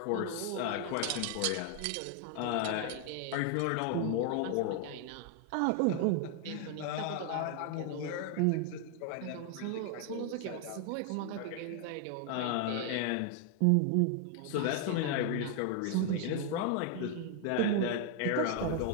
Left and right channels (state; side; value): different; both; correlation 0.00